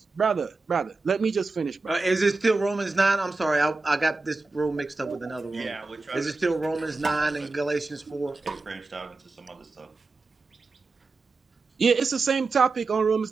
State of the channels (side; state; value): left; quieter; 3.7 dB